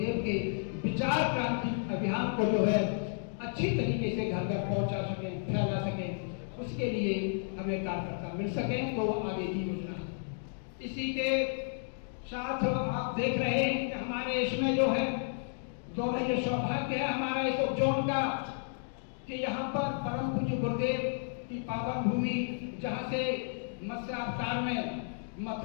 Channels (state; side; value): silent; right; digital silence